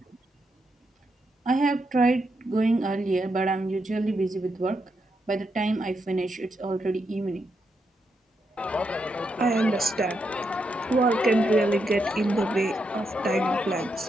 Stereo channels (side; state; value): both; normal; correlation 0.82